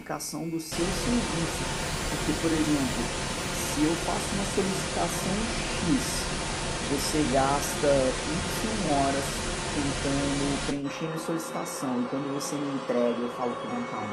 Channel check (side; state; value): both; identical; correlation 1.00